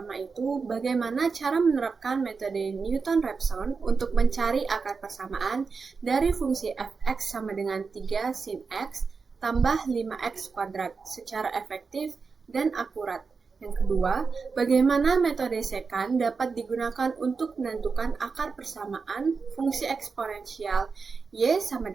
itu bagaimana cara menerapkan metode Newton-Raphson untuk mencari akar persamaan dari fungsi f(x) sama dengan 3 sin x tambah 5x kuadrat secara efektif dan akurat. Yang kedua, bagaimana metode secant dapat digunakan untuk menentukan akar persamaan fungsi eksponensial y sama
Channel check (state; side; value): quieter; left; 4.9 dB